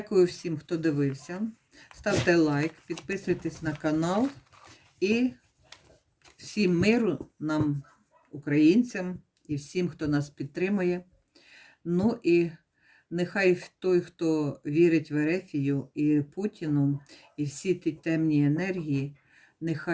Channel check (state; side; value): identical; both; correlation 1.00